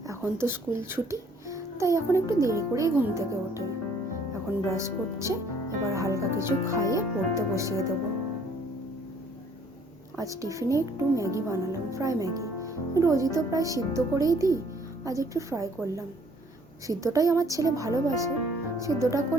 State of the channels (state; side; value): normal; both; correlation 0.61